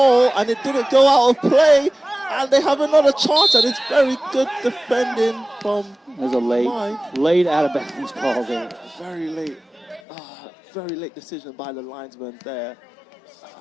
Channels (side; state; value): right; drops out; at 10.0 s